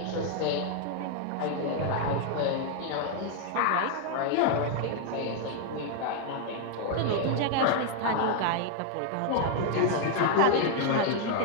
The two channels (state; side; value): different; both; correlation 0.00